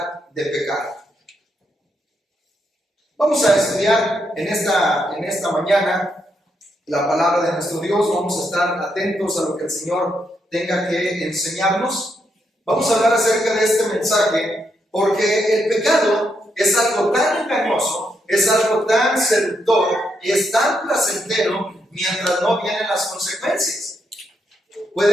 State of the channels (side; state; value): both; normal; correlation 0.79